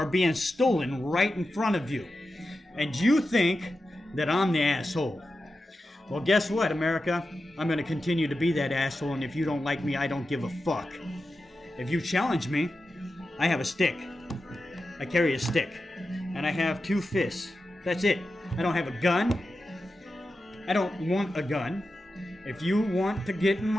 being stolen right in front of you. And you think that I'm the asshole. Well, guess what, America? I'm going to continue to be that asshole, and if you don't like me, I don't give a fuck. If you challenge me, I have a stick. I carry a stick. And I have 2 fists. That's it. I don't have a gun. I don't want a gun. If you want to get in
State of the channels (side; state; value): both; normal; correlation 0.91